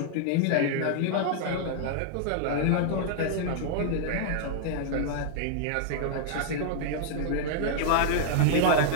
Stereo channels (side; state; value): both; different; correlation -0.01